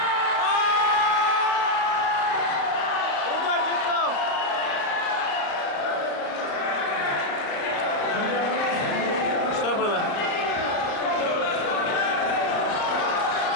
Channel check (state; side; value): late; right; 35 ms